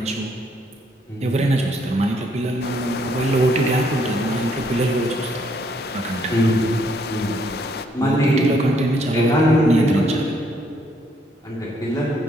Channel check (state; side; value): normal; both; correlation 0.70